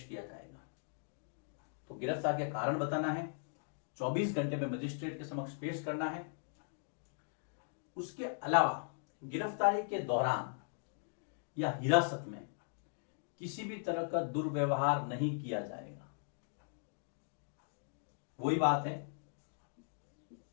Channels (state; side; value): silent; right; digital silence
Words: किया जाएगा। तो गिरफ्तार के कारण बताना है, 24 घंटे में मजिस्ट्रेट के समक्ष पेश करना है। उसके अलावा गिरफ्तारी के दौरान या हिरासत में किसी भी तरह का दुर्व्यवहार नहीं किया जाएगा। वही बात है,